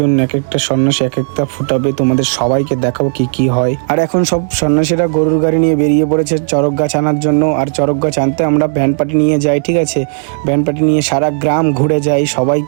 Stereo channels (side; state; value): left; silent; digital silence